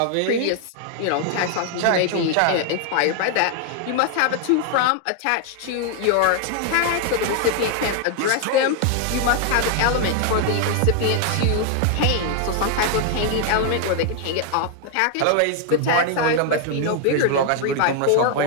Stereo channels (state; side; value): different; both; correlation 0.00